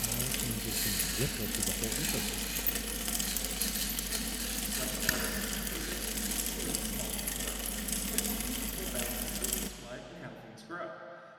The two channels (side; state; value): both; identical; correlation 1.00